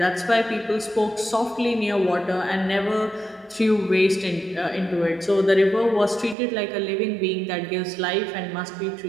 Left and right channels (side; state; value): left; drops out; at 6.4 s